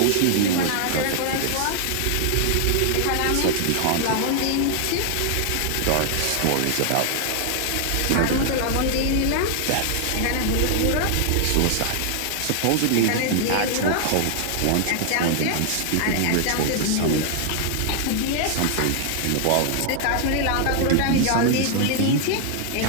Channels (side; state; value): both; different; correlation 0.00